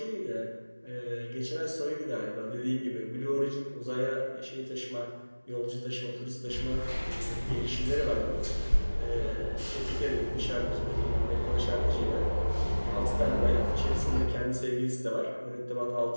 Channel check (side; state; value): both; inverted; correlation -1.00